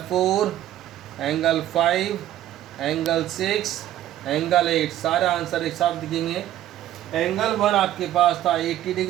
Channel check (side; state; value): left; quieter; 12.8 dB